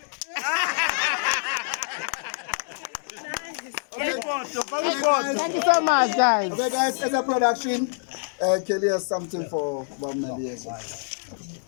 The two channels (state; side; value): silent; right; digital silence